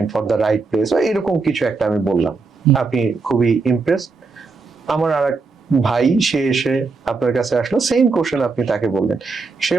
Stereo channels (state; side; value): quieter; left; 4.2 dB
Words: for the right place, এরকম কিছু একটা আমি বললাম। আপনি খুবই ইমপ্রেসড। আমার আর ভাই সে এসে আপনার কাছে আসলো, সেম কোশ্চেন আপনি তাকে বললেন, সে